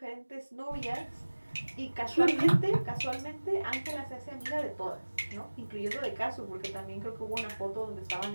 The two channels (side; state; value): both; inverted; correlation -1.00